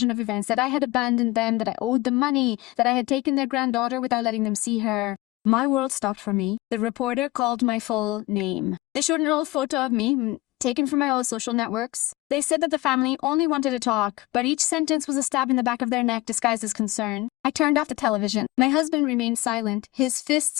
of events, that I had abandoned them, that I owed them money, that I had taken their granddaughter without letting them see her. My world stopped for me. The reporter called my full name. They showed an old photo of me, taken from my old social networks. They said that the family only wanted to talk, but each sentence was a stab in the back of their neck disguised as concern. I turned off the television. My husband remained silent, his fists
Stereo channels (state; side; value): quieter; right; 19.0 dB